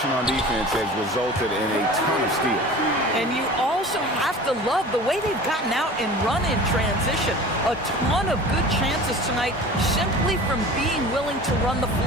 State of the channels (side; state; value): both; normal; correlation 0.39